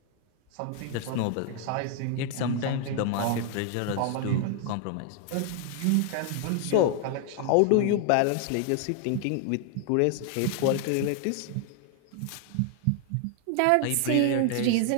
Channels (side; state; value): both; different; correlation 0.00